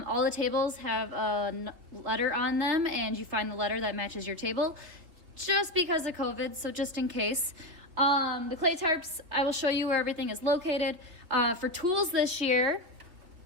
the tables have a letter on them, and you find the letter that matches your table just because of COVID, so just in case. The clay tarps, I will show you where everything is located. For tools this year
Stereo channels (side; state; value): left; late; 3.2 ms